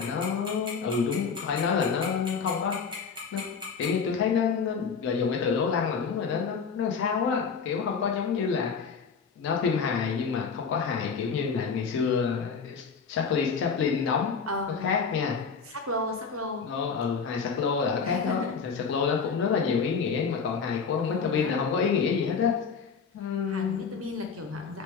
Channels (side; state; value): right; quieter; 5.7 dB